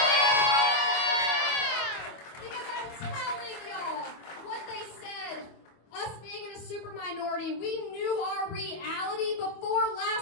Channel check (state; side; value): late; right; 25 ms